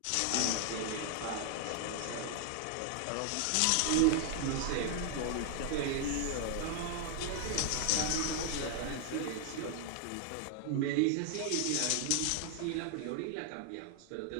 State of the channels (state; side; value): different; both; correlation 0.00